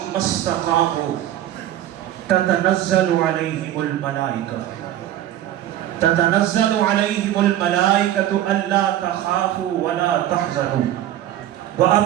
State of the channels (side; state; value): left; quieter; 12.5 dB